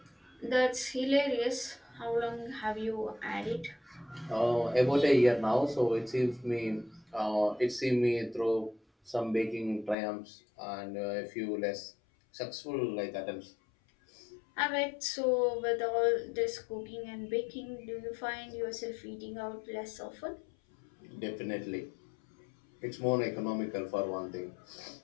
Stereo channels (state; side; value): drops out; right; at 10.0 s